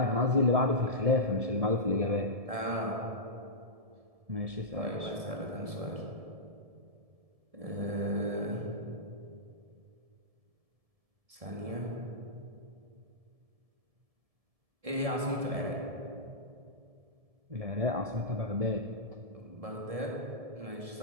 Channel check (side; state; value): left; late; 1.7 ms